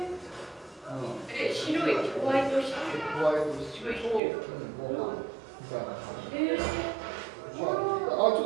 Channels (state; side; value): drops out; left; at 4.2 s